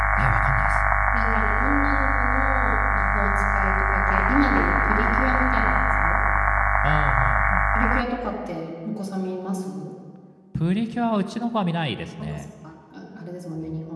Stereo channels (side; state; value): both; identical; correlation 1.00